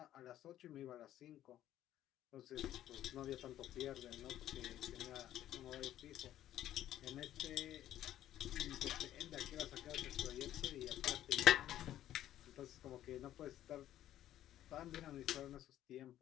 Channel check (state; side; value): quieter; right; 12.5 dB